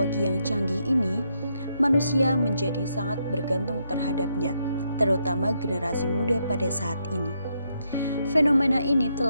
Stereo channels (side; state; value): both; inverted; correlation -0.78